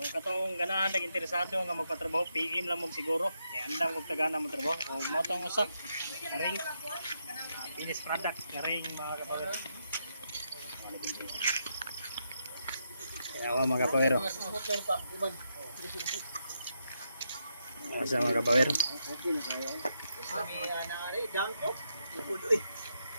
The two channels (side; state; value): both; inverted; correlation -0.81